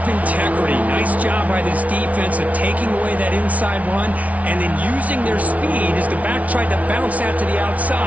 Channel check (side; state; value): left; late; 0.068 ms